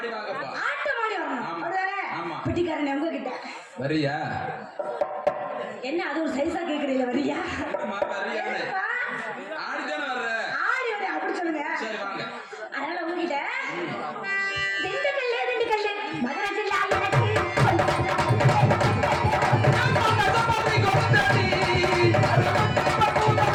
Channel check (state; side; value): identical; both; correlation 1.00